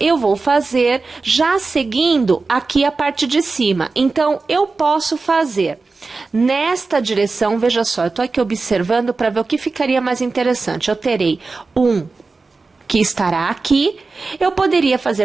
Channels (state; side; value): quieter; left; 3.9 dB